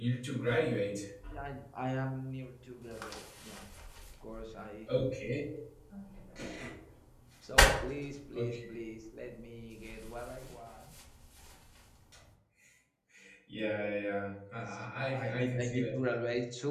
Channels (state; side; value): identical; both; correlation 1.00